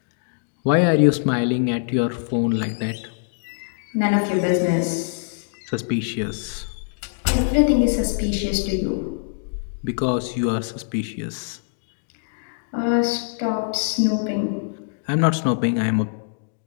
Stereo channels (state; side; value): silent; right; digital silence